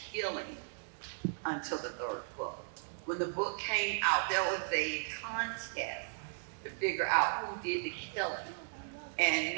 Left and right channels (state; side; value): silent; left; digital silence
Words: killing until the 3rd book. When the book came out, there was a contest to figure out who did the killing. And